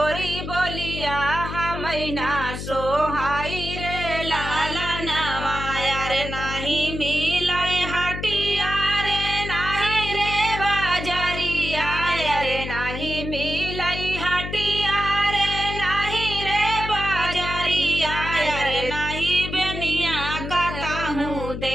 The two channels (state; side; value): noise; left; hum, 7 dB below the sound